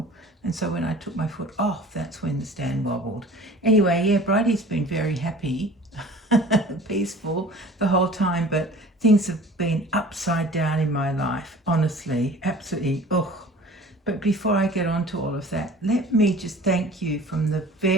And so when I took my foot off, that's when the stand wobbled. Anyway, yeah, Bridie's been very happy, peaceful the whole time, but things have been upside down in my life, honestly, absolutely, ugh. But before I get on to all of that, let me just thank you from the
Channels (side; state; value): both; normal; correlation 0.45